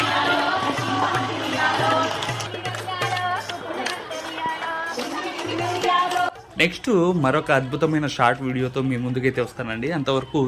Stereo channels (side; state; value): both; identical; correlation 1.00